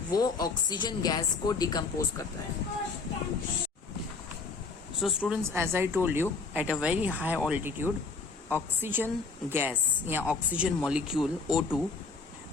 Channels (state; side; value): quieter; right; 4.4 dB